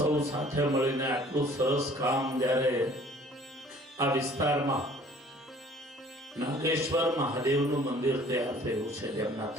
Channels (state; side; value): normal; both; correlation 0.53